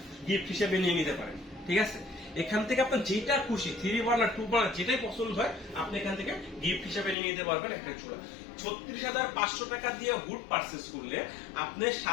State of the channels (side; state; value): right; drops out; at 7.2 s